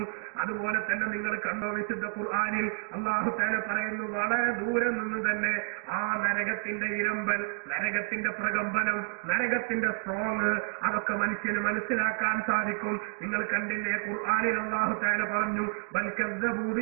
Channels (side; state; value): left; silent; 58 dB below the other